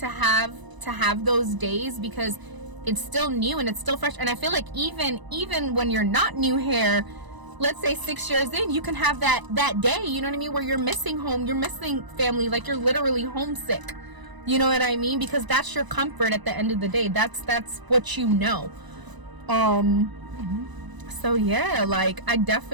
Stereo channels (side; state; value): left; late; 1.0 ms